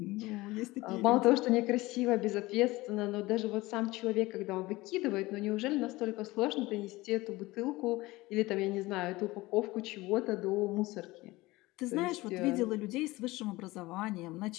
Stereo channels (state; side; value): quieter; right; 20.1 dB